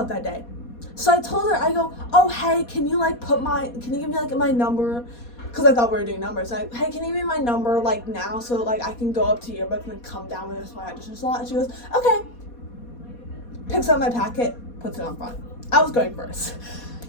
that day. So I told her, I go, oh, hey, can you give me like my number? Because I thought we were doing numbers. Hey, can you give me my number like now so like I can go up to yearbook and then come down with this my audition slot? And she goes, okay. Picks up my packet, puts it on front. I was going first.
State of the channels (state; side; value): late; right; 4.2 ms